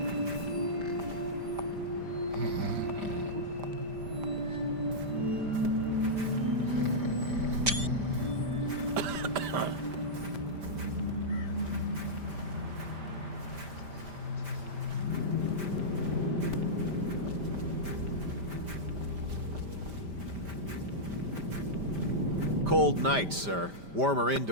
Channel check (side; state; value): left; late; 5.1 ms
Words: Cold night, sir. Warmer